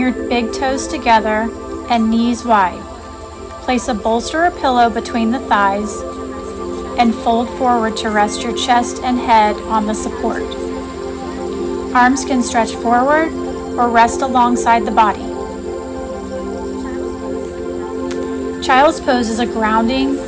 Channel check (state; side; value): identical; both; correlation 1.00